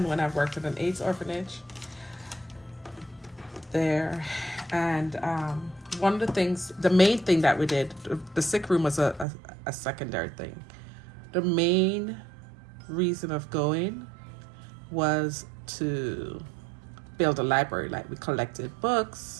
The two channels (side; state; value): left; drops out; at 9.2 s